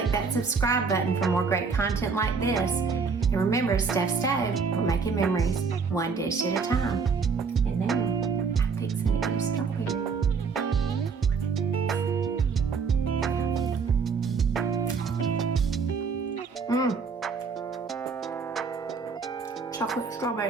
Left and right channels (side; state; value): left; quieter; 5.3 dB